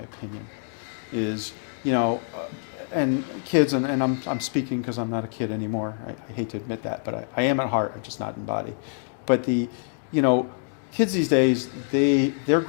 Is, and kids, and I'm speaking because I'm not a kid anymore. I hate to admit that, but I am at heart. I'm just not in body. But kids these days, they're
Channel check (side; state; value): right; silent; 61 dB below the other